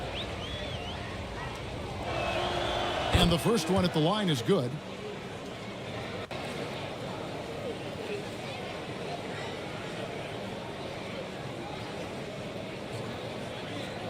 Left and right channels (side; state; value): both; identical; correlation 1.00